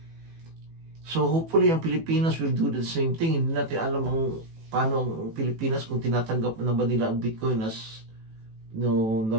So hopefully ang Pilipinas will do the same thing. Hindi natin alam paano ang Pilipinas kung tinatanggap na ba nila ang Bitcoin as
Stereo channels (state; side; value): late; left; 18 ms